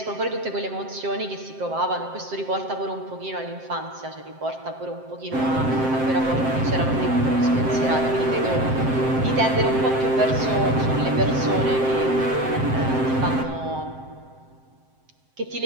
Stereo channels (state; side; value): late; left; 7.6 ms